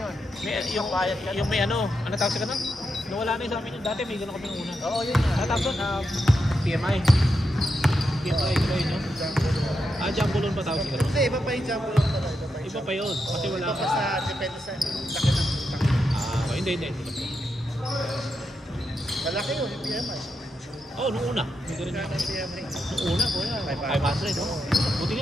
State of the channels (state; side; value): normal; both; correlation 0.85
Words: yun. Yung bayad ka. may ano tawag sa ganun? Nawala na yung sa amin yun. Dati may ganun kami nung una. Oo, yun nga. Ano tawag doon? PMI. PMI, diba yun yun? Jumbo loan pa tawag sa ganun? Hindi, iba pa yung jumbo loan talaga. Iba pa yun. Kasi wala Iba ka. pa sa, depende sa laki ng utang. Hindi. Malaki yun, yung PMI. Oo, nung una. May ganun Kaya yun. ng PMI. Nung una, kuya. 500. 500. Oh. Buti